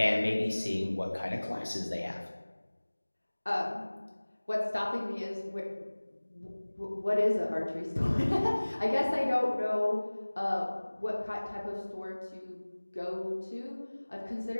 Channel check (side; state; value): both; inverted; correlation -1.00